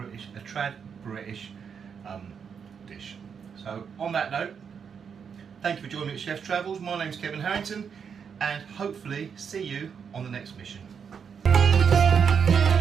a trad British dish. So on that note, thank you for joining me at Chef's Travels. My name's Kevin Harrington, and hopefully see you on the next mission.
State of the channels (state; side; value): quieter; left; 6.8 dB